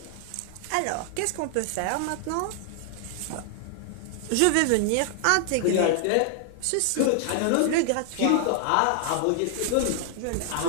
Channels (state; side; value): different; both; correlation 0.00